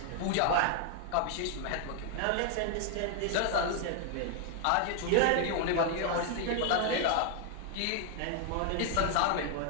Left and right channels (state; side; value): different; both; correlation 0.00